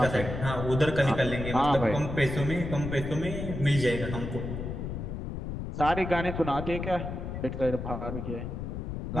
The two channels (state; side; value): noise; left; rumble, 5 dB below the sound